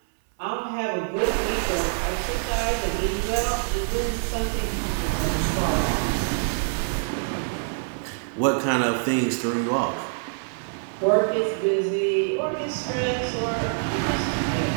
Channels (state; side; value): silent; left; 59 dB below the other